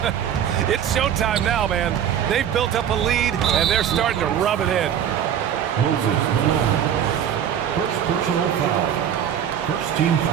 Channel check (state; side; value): quieter; left; 9.3 dB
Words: It's showtime now, man. They've built up a lead, and they're starting to rub it in. Moses Malone. First personal foul. First team